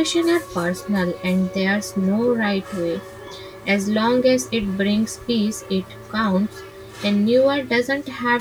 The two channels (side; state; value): both; identical; correlation 1.00